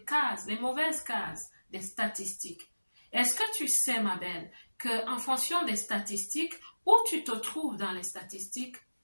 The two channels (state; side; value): inverted; both; correlation -1.00